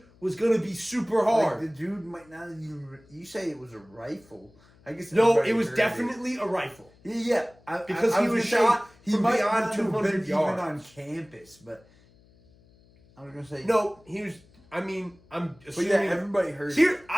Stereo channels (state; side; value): noise; left; hum, 29 dB below the sound